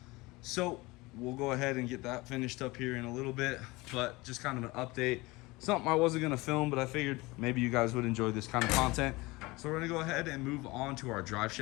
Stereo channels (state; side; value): quieter; right; 22.4 dB